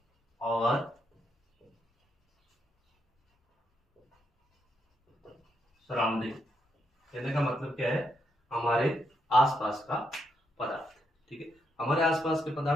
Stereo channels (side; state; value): both; normal; correlation 0.79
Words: आवर सराउंडिंग। कहने का मतलब क्या है, हमारे आसपास का पदार्थ। ठीक है, हमारे आसपास के